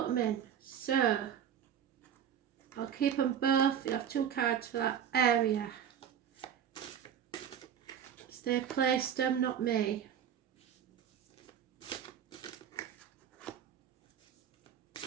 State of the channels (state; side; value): quieter; left; 8.9 dB